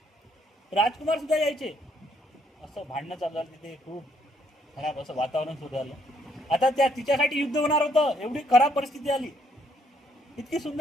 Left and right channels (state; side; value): normal; both; correlation 0.69